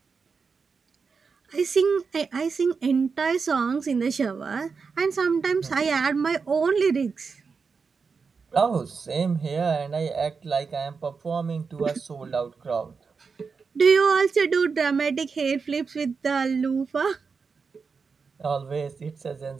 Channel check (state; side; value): quieter; left; 5.2 dB